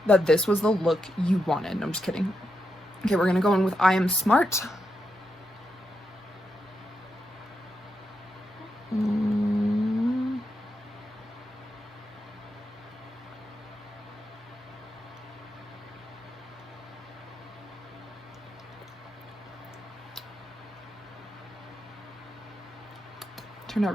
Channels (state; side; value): normal; both; correlation 0.84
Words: that this was the look you wanted. No, I'm just kidding. Okay, we're gonna go in with I Am Smart. Turned out